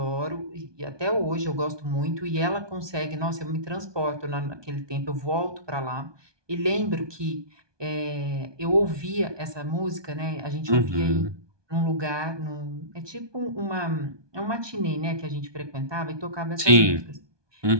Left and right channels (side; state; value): left; late; 1.2 ms